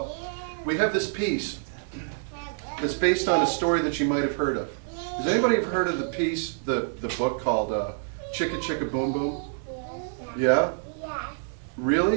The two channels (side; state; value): left; silent; digital silence